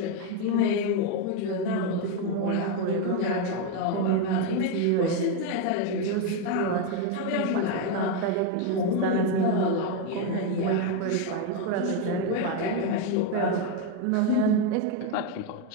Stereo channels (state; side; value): different; both; correlation 0.02